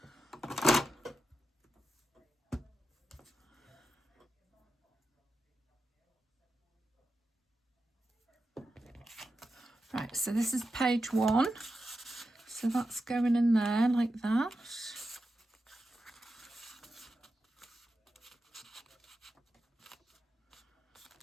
right, so this is page 1. So that's going in there like that.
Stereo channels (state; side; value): normal; both; correlation 0.89